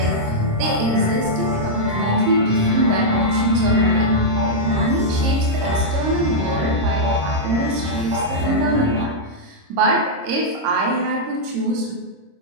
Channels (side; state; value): left; late; 26 ms